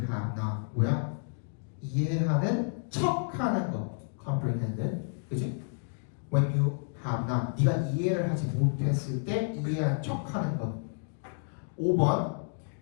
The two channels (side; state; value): right; silent; digital silence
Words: not. 뭐야? 이해하는 척하는 거. Comprehended. 그치? When you have not. 네가 이해를 하지 못했을 때 이해한 척하는 것. 5번